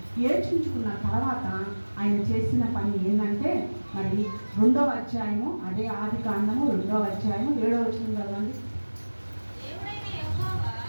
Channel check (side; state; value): both; inverted; correlation -1.00